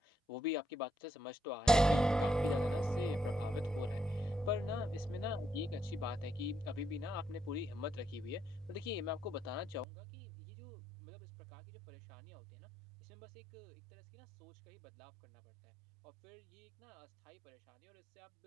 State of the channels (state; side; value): drops out; left; at 9.9 s